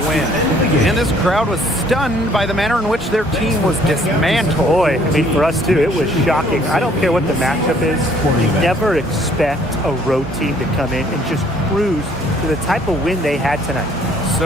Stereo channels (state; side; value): normal; both; correlation 0.61